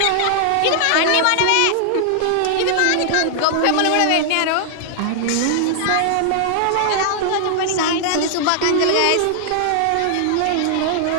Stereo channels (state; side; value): different; both; correlation -0.01